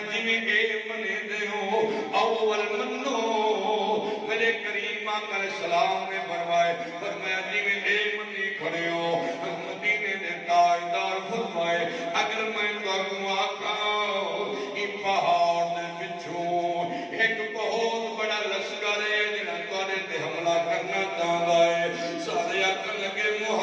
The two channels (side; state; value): both; identical; correlation 1.00